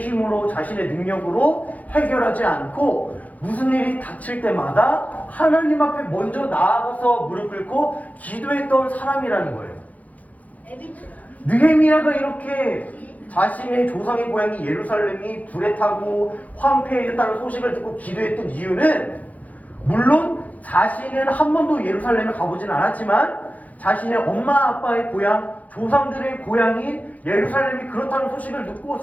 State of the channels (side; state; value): right; late; 0.075 ms